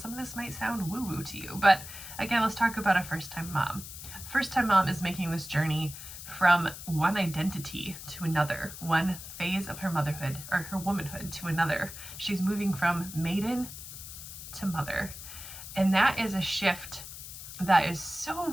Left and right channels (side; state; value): left; noise; hiss, 11 dB below the sound